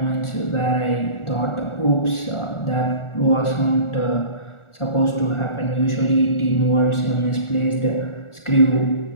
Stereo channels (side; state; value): right; late; 1.4 ms